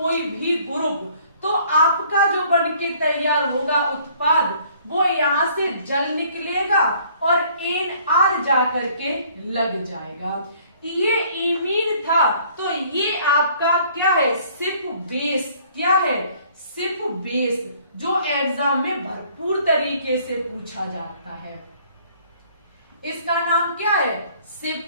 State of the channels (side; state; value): both; inverted; correlation -0.58